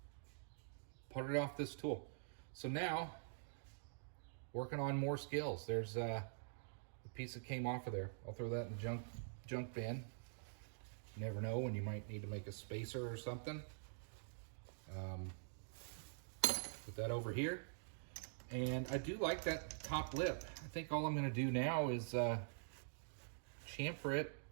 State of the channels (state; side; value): silent; left; digital silence